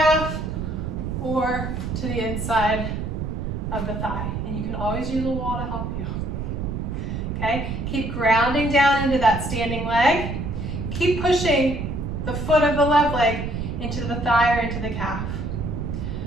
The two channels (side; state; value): right; noise; rumble, 4 dB below the sound